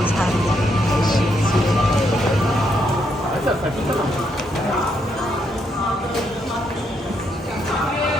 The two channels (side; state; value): both; normal; correlation 0.77